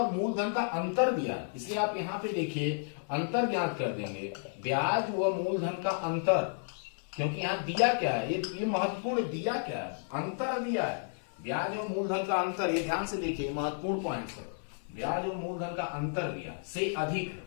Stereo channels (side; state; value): right; silent; 56 dB below the other